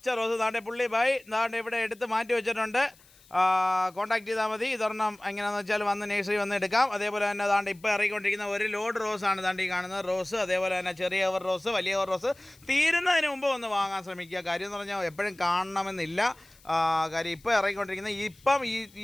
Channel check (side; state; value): left; noise; hiss, 27 dB below the sound